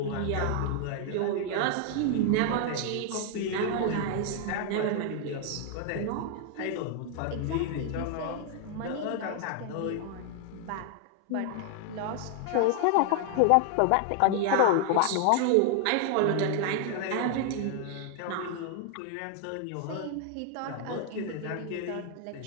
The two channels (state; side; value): different; both; correlation 0.00